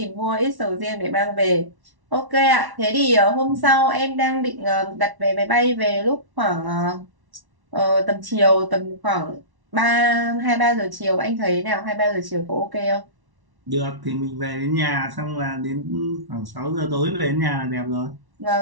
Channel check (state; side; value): late; left; 1.1 ms